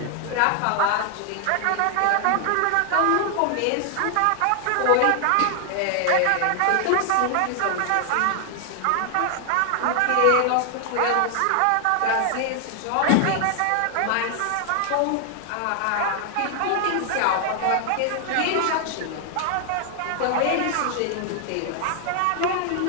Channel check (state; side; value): different; both; correlation 0.00